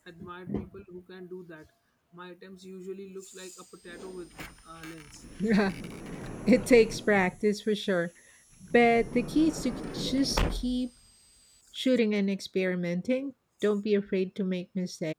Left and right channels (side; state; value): both; identical; correlation 1.00